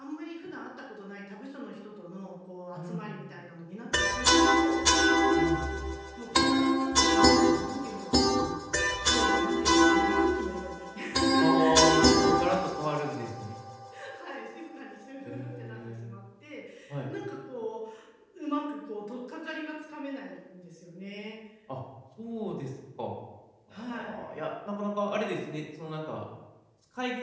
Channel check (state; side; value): identical; both; correlation 1.00